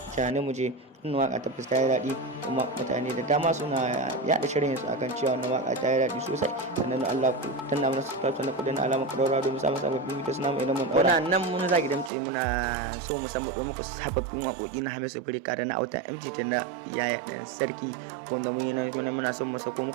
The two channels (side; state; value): left; drops out; at 12.1 s